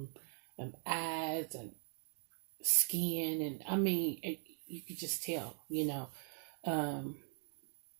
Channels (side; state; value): left; silent; 51 dB below the other